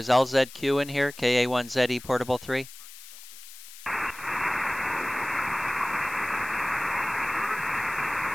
LZQ in here? KA1ZE Portable 3?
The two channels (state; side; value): noise; left; hiss, 17 dB below the sound